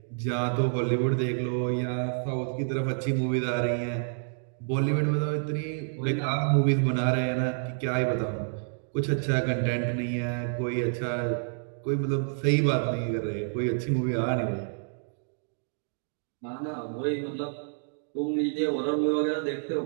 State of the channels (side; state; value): left; silent; digital silence